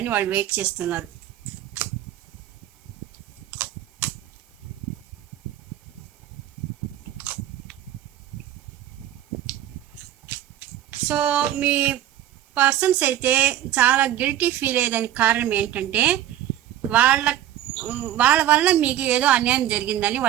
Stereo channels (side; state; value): left; quieter; 12.4 dB